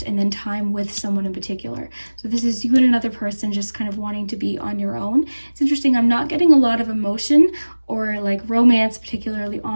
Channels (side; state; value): both; inverted; correlation -1.00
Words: and then time with someone in particular. So this is you and another person just kind of wanting to be on your own. It's interesting. I'm not getting a lot of emotion or like romance, particularly